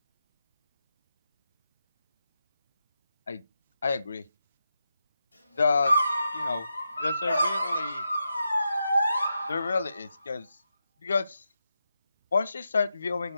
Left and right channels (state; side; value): inverted; both; correlation -0.88